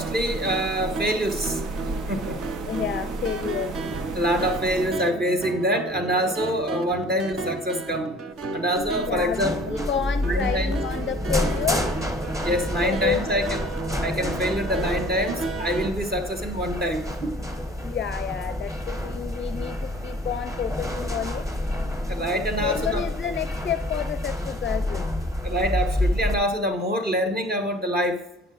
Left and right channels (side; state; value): both; normal; correlation 0.49